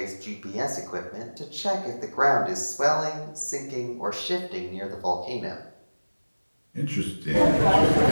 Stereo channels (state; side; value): inverted; both; correlation -1.00